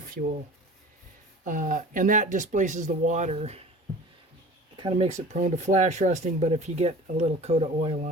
fuel. And that displaces the water. Kind of makes it prone to flash rusting, but if you get a little coat of oil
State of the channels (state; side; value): normal; both; correlation 0.41